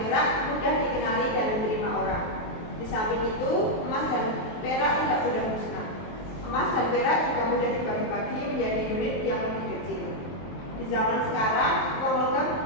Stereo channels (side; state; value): right; late; 23 ms